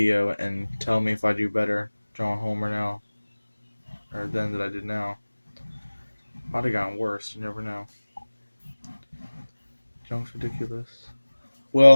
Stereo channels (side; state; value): both; inverted; correlation -1.00